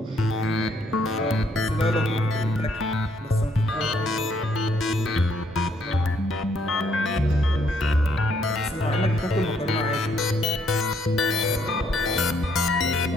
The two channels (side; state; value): both; normal; correlation 0.70